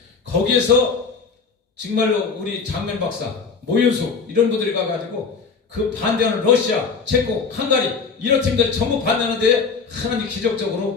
거기에서 정말로 우리 장면 박사 모윤수 이런 분들이 가가지고 그 반대하는 러시아, 체코, 헝가리 이런 팀들이 전부 반대하는데 하나님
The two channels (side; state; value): right; quieter; 5.1 dB